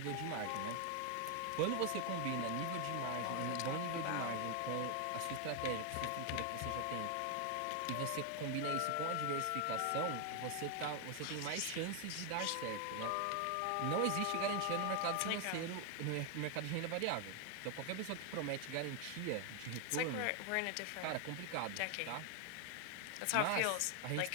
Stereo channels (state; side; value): different; both; correlation 0.00